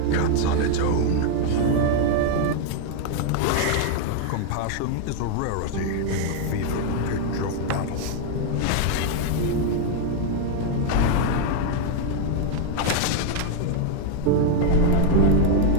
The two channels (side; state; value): both; different; correlation 0.00